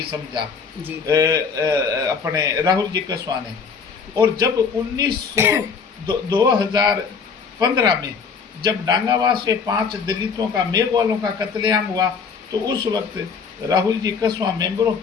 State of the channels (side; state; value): right; quieter; 5.7 dB